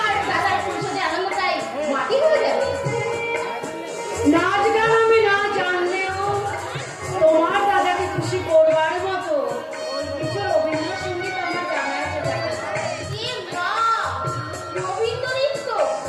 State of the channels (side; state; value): both; identical; correlation 1.00